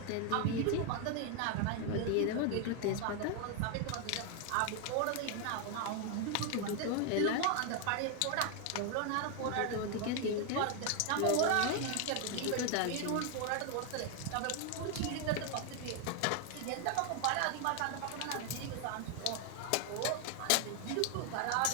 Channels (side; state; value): both; different; correlation 0.00